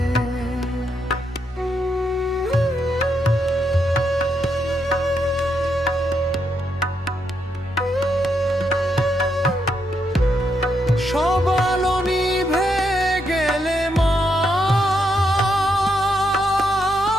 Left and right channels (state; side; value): normal; both; correlation 0.79